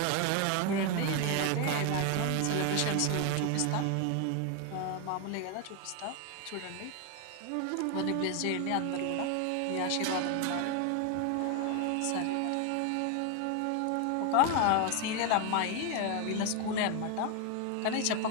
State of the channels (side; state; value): both; different; correlation 0.01